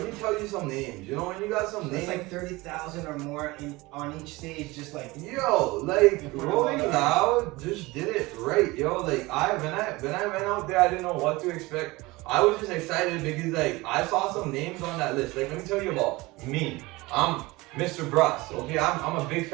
me tell you some names. You know when you got some names. It's like 30,000 or more on each stage, just like. Yo, like Rolling Loud just did it right, yo. Like when I went out there, I didn't know what to expect. I was just excited because like I saw some names on that list. Like let me tell you about me. I'm Mr. Bruss. Okay, I'm a big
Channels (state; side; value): quieter; left; 21.7 dB